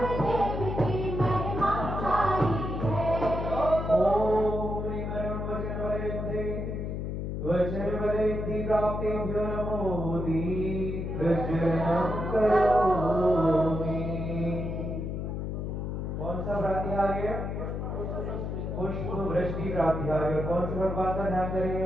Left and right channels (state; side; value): noise; left; hum, 3 dB below the sound